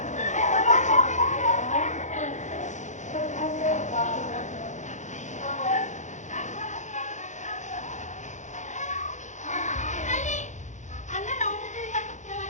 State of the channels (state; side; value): late; right; 0.35 ms